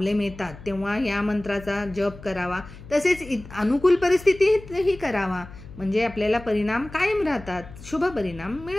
येतात तेव्हा या मंत्राचा जप करावा, तसेच अनुकूल परिस्थितीही करावा, म्हणजे आपल्याला परिणाम कायम राहतात, शुभ परिणाम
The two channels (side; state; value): left; noise; hum, 17 dB below the sound